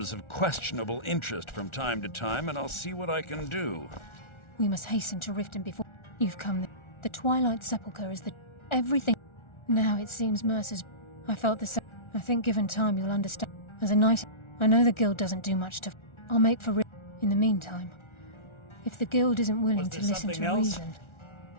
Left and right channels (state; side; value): late; right; 1.4 ms